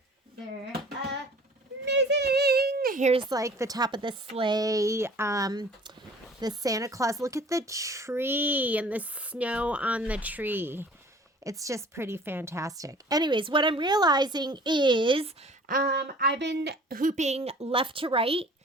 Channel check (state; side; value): normal; both; correlation 0.49